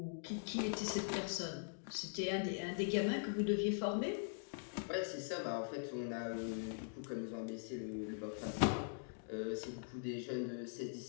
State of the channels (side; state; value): right; silent; digital silence